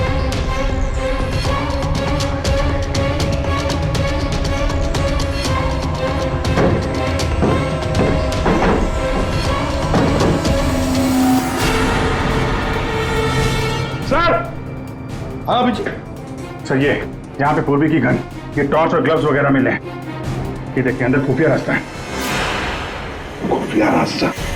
सर। हाँ अभिजीत। सर ये यहाँ पे पूर्वी की गन, ये टॉर्च और ग्लव्स वगैरह मिले हैं। ये देखिए अंदर खुफिया रास्ता है। खुफिया रास्ता?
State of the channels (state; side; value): identical; both; correlation 1.00